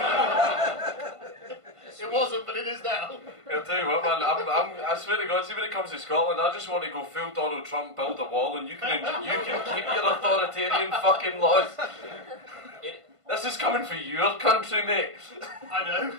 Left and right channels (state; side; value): late; left; 1.5 ms